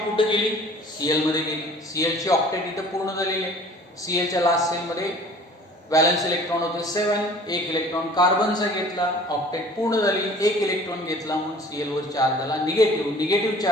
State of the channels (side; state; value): both; normal; correlation 0.48